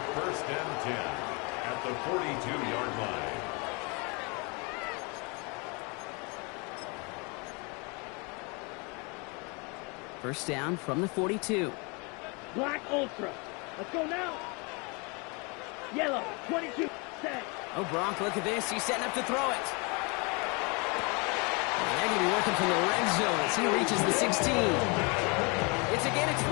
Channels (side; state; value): right; quieter; 30.8 dB